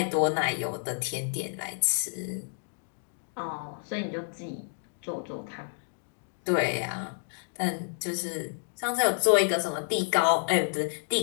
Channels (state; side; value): silent; right; digital silence